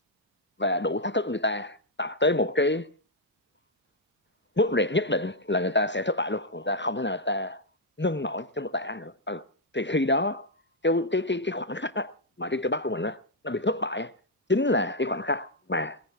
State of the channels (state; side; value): normal; both; correlation -0.03